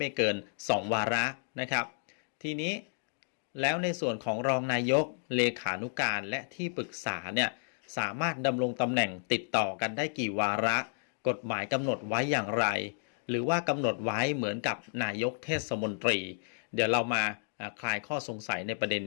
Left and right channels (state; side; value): silent; right; digital silence